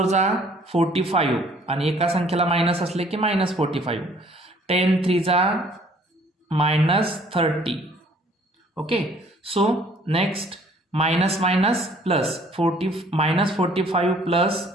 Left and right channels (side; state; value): both; normal; correlation 0.58